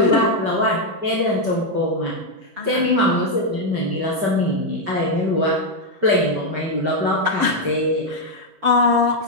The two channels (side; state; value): left; late; 5.1 ms